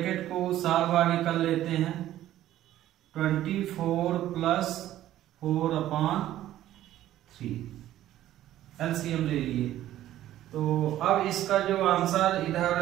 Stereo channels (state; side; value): quieter; left; 13.3 dB